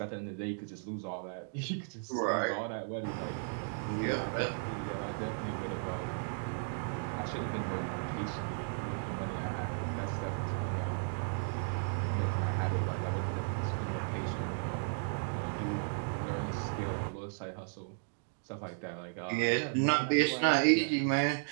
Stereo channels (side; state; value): left; silent; digital silence